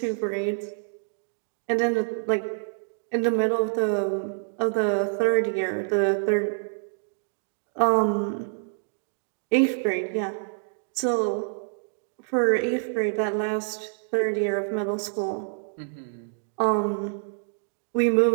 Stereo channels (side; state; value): left; silent; digital silence